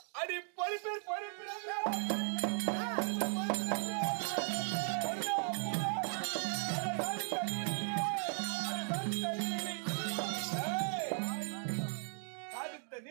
அடி பொறுப்பேர் சாதித்த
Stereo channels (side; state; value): left; silent; 53 dB below the other